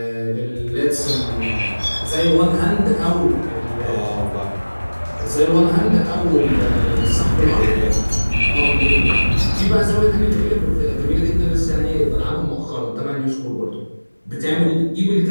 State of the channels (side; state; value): both; inverted; correlation -1.00